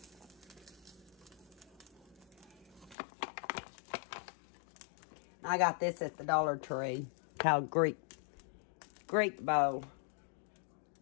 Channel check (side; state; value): right; drops out; at 3.0 s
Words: I got this at the Dollar Tree, called Greek bowl.